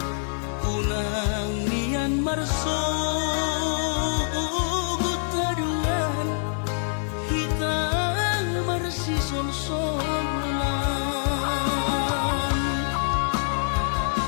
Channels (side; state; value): right; silent; digital silence